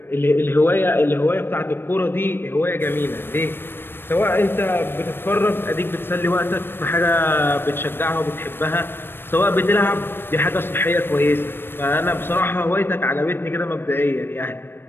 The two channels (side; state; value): right; late; 0.10 ms